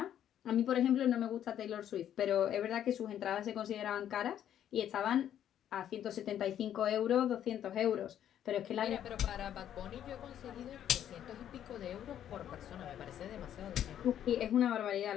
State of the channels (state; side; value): quieter; right; 10.4 dB